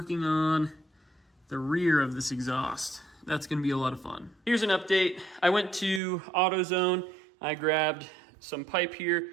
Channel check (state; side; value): drops out; left; at 6.0 s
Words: on the rear of this exhaust. That's gonna be a lot of fun. Here's an update. I went to AutoZone. I grabbed some pipe here.